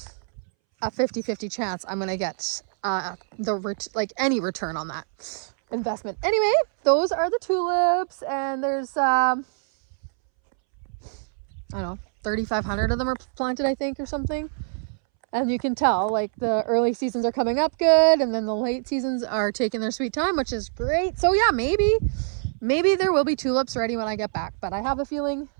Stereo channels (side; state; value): left; silent; 62 dB below the other